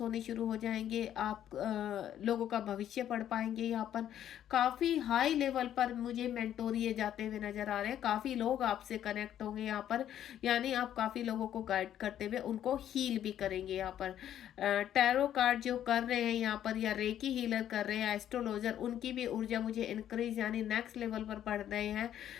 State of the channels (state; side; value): quieter; right; 10.8 dB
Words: होने शुरू हो जाएंगे। आप लोगों का भविष्य पढ़ पाएंगे। यहाँ पर काफ़ी हाई लेवल पर मुझे मेंटोरिए जाते हुए नजर आ रहे हैं। काफ़ी लोग आपसे कनेक्ट होंगे यहाँ पर, यानी आप काफ़ी लोगों को गाइड करते हुए उनको हील भी करेंगे। यहाँ पर टैरो कार्ड जो कर रहे हैं यहाँ पर, या रेकी हीलर कर रहे हैं, एस्ट्रोलॉजर, उनकी भी ऊर्जा मुझे इंक्रीज यानी नेक्स्ट लेवल पर बढ़ रहे हैं।